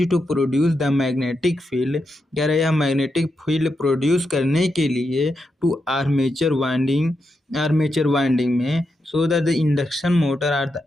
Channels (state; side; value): normal; both; correlation 0.85